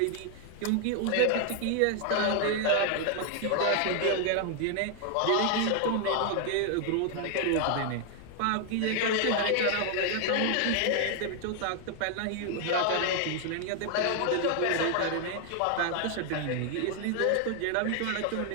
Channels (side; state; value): both; different; correlation 0.00